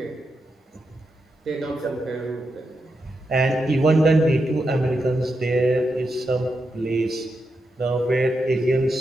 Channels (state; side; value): normal; both; correlation 0.86